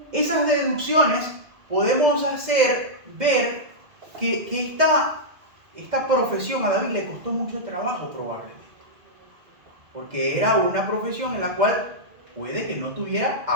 esas deducciones podemos hacer ver que esta profesión a David le costó mucho trabajo probablemente, porque era una profesión en la cual puede que no tuviera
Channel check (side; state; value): left; late; 2.1 ms